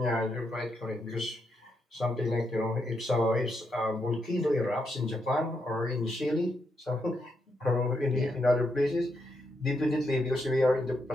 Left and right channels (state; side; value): normal; both; correlation 0.80